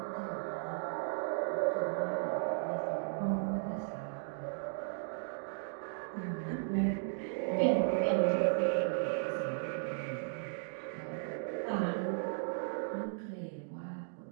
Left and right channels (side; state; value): left; silent; digital silence